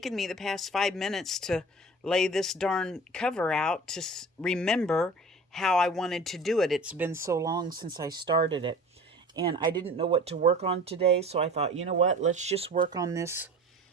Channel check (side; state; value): both; normal; correlation 0.40